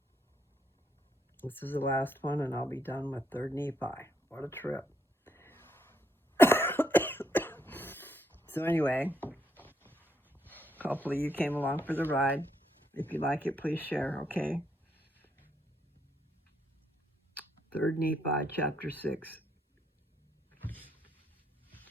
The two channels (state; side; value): normal; both; correlation 0.75